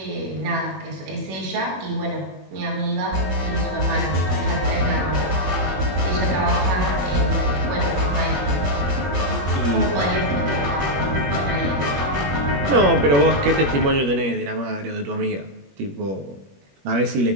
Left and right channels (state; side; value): late; left; 21 ms